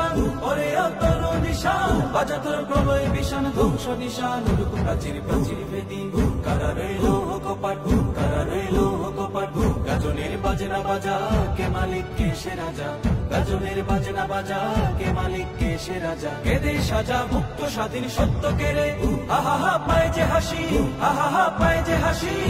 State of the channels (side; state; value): both; identical; correlation 1.00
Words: ওরে অতর নিশান বাজা তোর প্রলয় বিশান ধ্বংস নিশান প্রাচীর প্রাচীর বেদি কারা রইল কপাট কারা রইল কপাট গাজনের বাজনা বাজা কে মালিক কে সে রাজা গাজনের বাজনা বাজা কে মালিক কে সে রাজা কেদে সাজা মুক্ত স্বাধীন সত্য কেড়ে আহা পায় যে হাসি আহা পায় যে হাসি